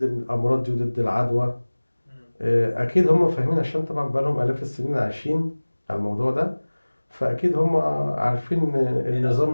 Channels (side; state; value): both; inverted; correlation -1.00